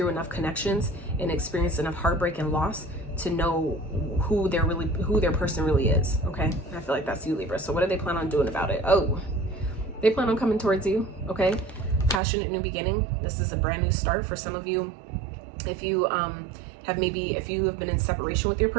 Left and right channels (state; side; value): drops out; left; at 12.2 s